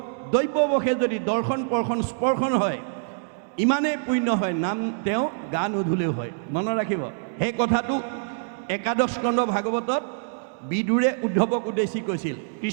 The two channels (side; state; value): left; silent; digital silence